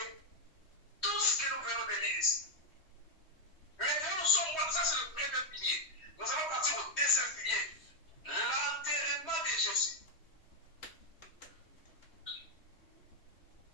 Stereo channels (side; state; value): right; late; 3.1 ms